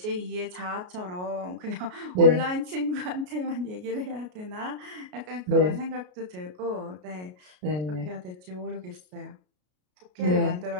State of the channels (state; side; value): late; left; 33 ms